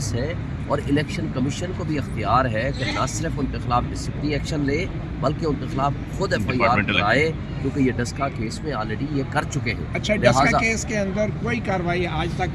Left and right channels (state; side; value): identical; both; correlation 1.00